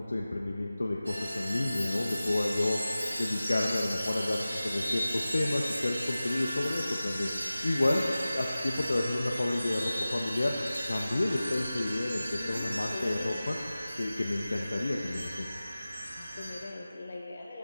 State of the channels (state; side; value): inverted; both; correlation -0.96